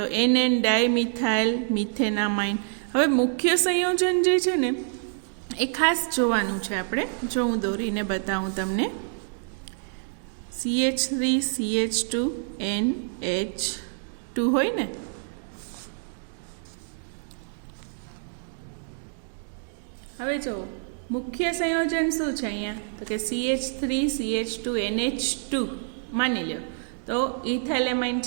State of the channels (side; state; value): left; silent; digital silence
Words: NN ડાયમિથાઇલ મિથેનામાઇન. હવે મુખ્ય સંયોજન જે છે ને એ ખાસ જોવાનું છે આપણે. જો હું દોરીને બતાવું તમને, CH3CH2NH2 હોય ને, હવે જો મુખ્ય સંયોજન શું છે અહીંયા તો કે CH3CH2NH2 માની લો તો ઇથાઇલ એમાઇન